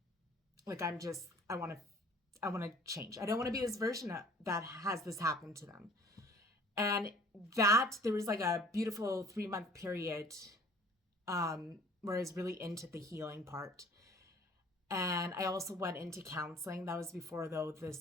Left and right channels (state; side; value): normal; both; correlation 0.51